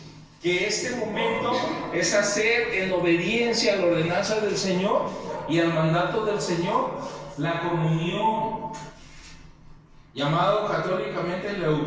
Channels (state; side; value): identical; both; correlation 1.00